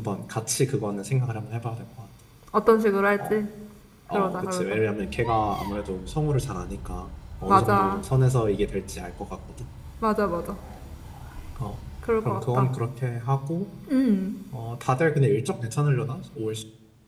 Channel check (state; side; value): identical; both; correlation 1.00